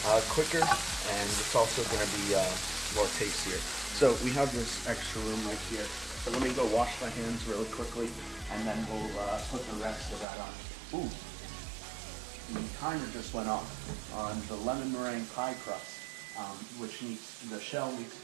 quicker, and it's also going to be more tastier. So we have this extra room right here. So let me go wash my hands really quickly, and then we'll put the rest of that on. Ooh, the timer just went off on the lemon meringue pie crust, which the shell needs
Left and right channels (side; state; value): left; drops out; at 10.2 s